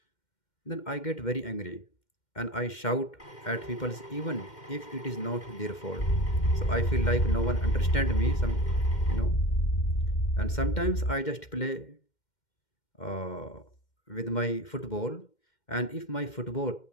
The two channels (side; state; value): right; late; 2.1 ms